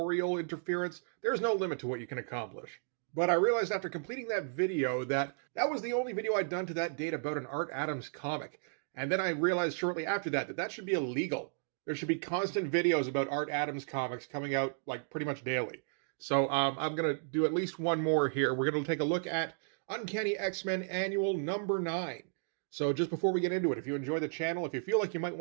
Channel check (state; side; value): silent; left; digital silence